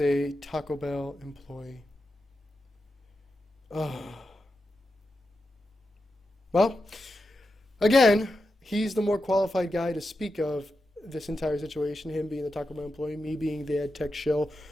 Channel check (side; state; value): both; normal; correlation 0.89